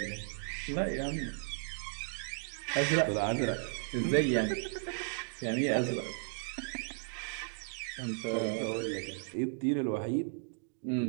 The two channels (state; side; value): silent; left; digital silence